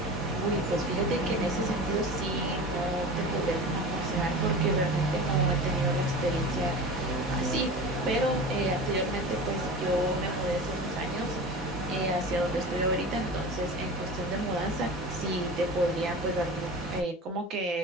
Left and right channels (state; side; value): normal; both; correlation 0.33